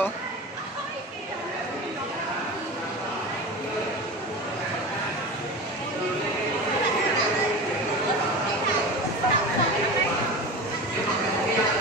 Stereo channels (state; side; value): normal; both; correlation 0.30